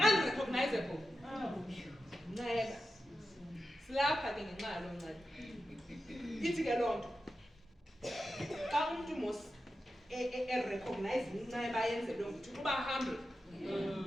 Inceba. Silapha ke ngenxa yalo nceba. Ithi ke lonto. Xa umuntu mos recognize inceba yenzelwe ukuthi kuba humble.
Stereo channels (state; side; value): normal; both; correlation 0.91